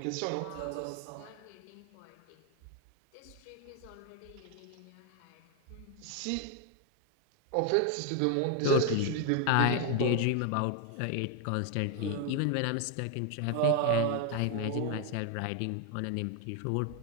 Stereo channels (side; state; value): both; different; correlation 0.00